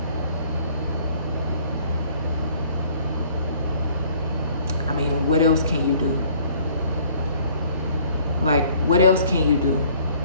I mean, what else can you do? Like, what else can you do?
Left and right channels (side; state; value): both; inverted; correlation -0.57